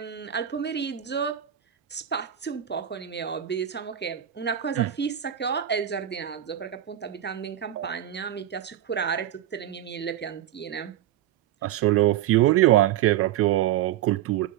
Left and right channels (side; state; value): left; quieter; 11.5 dB